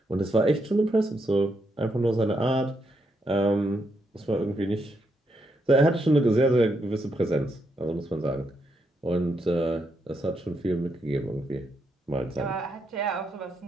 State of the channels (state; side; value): normal; both; correlation 0.79